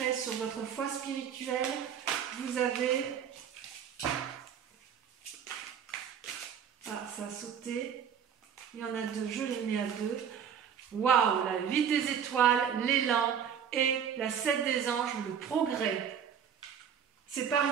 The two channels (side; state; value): left; quieter; 8.0 dB